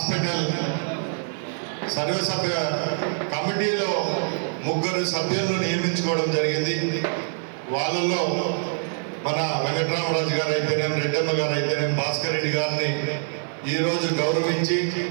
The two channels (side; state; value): left; silent; 58 dB below the other